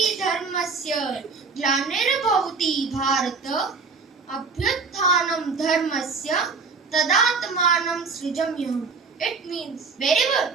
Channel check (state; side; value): quieter; left; 4.7 dB